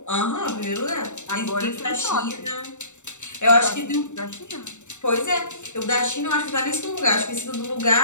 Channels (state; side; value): late; right; 0.84 ms